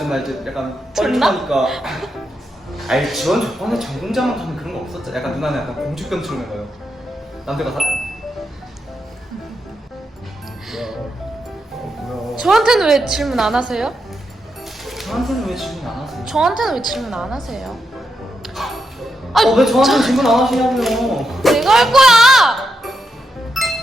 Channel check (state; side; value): normal; both; correlation 0.84